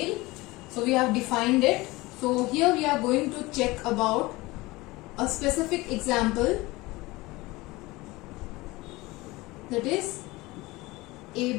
So we have defined it. So here we are going to check about a specific example, that is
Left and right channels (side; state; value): right; quieter; 21.2 dB